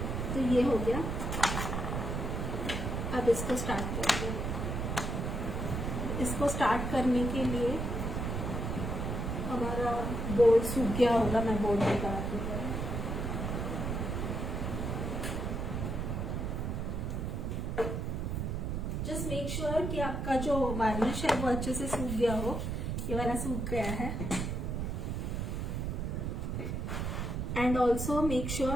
तो ये हो गया। अब इसको स्टार्ट करते हैं। इसको स्टार्ट करने के लिए हमारा बोर्ड सूख गया होगा, मैं बोर्ड निकालती हूँ। जस्ट मेक श्योर कि आपका जो वार्निश है वो अच्छे से सूख गया हो। ये वाला सूख गया है। एंड ऑल्सो मेक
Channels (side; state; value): right; noise; rumble, 2 dB below the sound